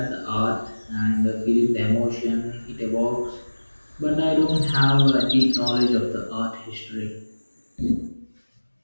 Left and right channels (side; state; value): both; inverted; correlation -1.00